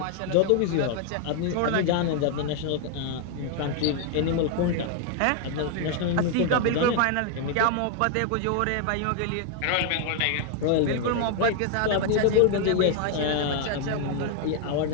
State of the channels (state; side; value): different; both; correlation 0.00